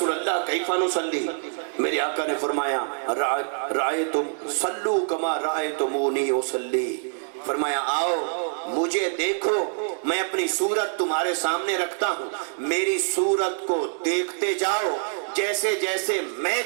اللہ کیف نصلی؟ میرے آقا نے فرمایا رأیتم صلو کما رأیتمونی اصلی، فرمایا آؤ مجھے دیکھو، میں اپنی صورت تمہارے سامنے رکھتا ہوں، میری صورت کو دیکھتے جاؤ، جیسے جیسے میں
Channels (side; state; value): left; silent; digital silence